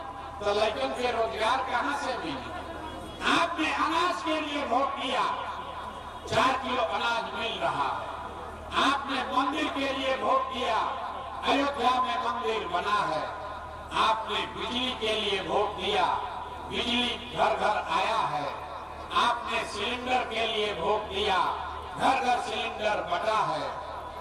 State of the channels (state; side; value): identical; both; correlation 1.00